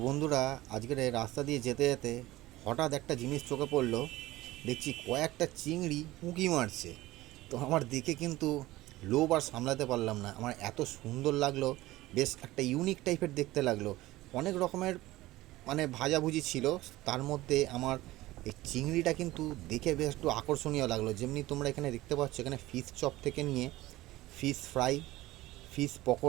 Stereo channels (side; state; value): left; quieter; 17.6 dB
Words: বন্ধুরা, আজকের এই রাস্তা দিয়ে যেতে যেতে হঠাৎ একটা জিনিস চোখে পড়লো। দেখছি কয়েকটা চিংড়ি উঁকি মারছে। তো আমার দেখে কিন্তু লোভ আর সামলাতে পারলাম না, আমার এত সুন্দর লাগলো। বেশ একটা ইউনিক টাইপের দেখতে লাগলো। অনেক রকমের ভাজাভুজি ছিল, তার মধ্যে আমার এই চিংড়িটা কিন্তু দেখে বেশ একটু আকর্ষণীয় লাগলো। যেমনি তোমরা এখানে দেখতে পাচ্ছ, এখানে ফিশ চপ থেকে নিয়ে ফিশ ফ্রাই, ফিশ